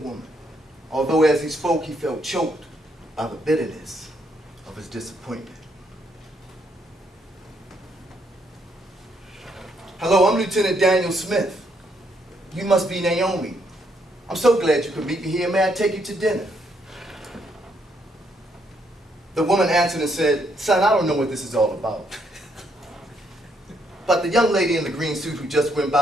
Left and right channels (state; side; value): normal; both; correlation 0.73